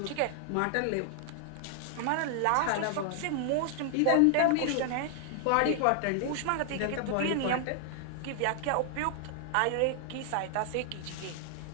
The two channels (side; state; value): both; different; correlation 0.00